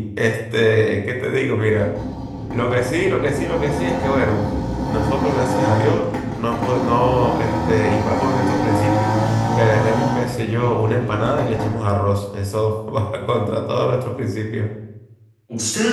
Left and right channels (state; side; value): identical; both; correlation 1.00